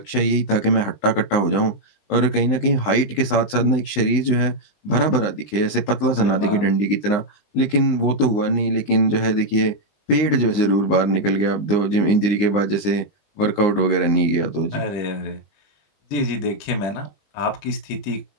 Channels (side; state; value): right; late; 19 ms